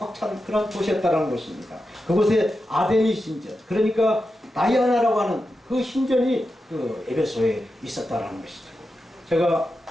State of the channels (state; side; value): normal; both; correlation 0.90